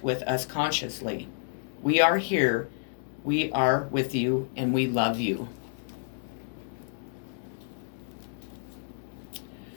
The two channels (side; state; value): right; silent; digital silence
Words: with us consciously. We are here, we are with you, and we love you.